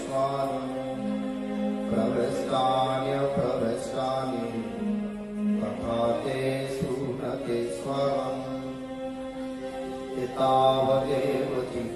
प्रविष्टान्यप्रविष्टानि तथा तेषु न ते स्वरम्। एतावदेव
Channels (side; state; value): both; identical; correlation 1.00